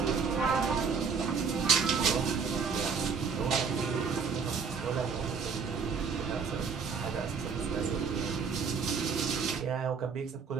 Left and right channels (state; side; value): quieter; left; 5.7 dB